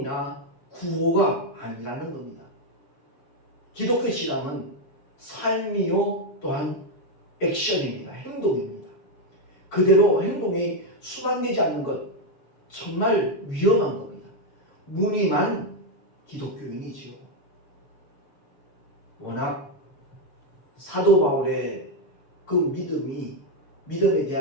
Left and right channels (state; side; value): late; right; 7.3 ms